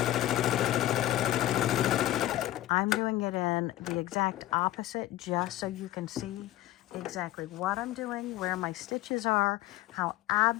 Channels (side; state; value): right; quieter; 14.7 dB